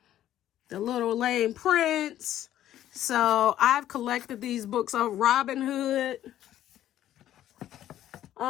The Little Lame Prince. So I've collected these books of Robin Hood.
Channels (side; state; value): right; quieter; 12.3 dB